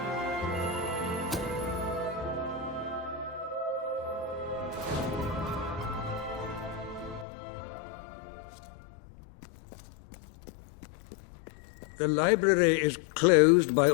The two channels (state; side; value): drops out; right; at 7.2 s